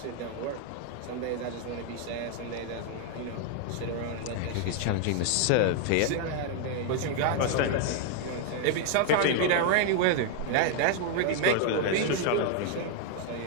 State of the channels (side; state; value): both; different; correlation 0.00